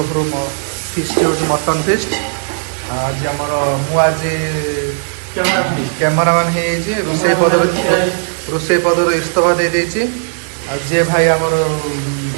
ଫିଷ୍ଟ ହେଉଛି ମଟନ୍ ଫିଷ୍ଟ। ଆଜି ଆମର ମୁଁ ଆଜି କ୍ୟାମେରାମ୍ୟାନ୍ ହେଇଯାଇଛି। ରୋଷେଇ ପଦରୁ ଇସ୍ତଫା ଦେଇଦେଇଛି। ଆଉ ଯିଏ ଭାଇ ଆମର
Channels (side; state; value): left; silent; digital silence